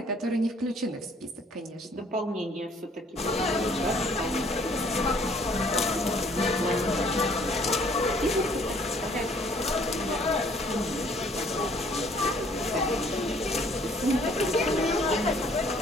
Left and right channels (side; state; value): both; normal; correlation 0.60